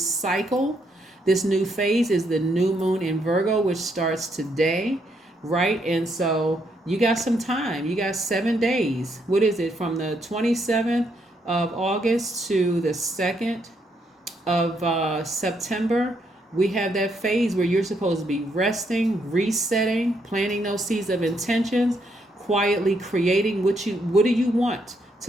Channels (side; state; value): both; normal; correlation 0.75